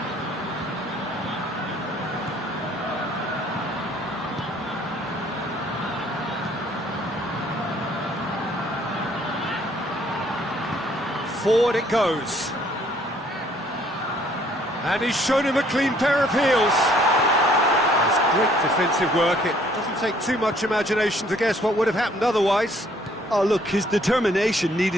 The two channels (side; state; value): both; normal; correlation 0.62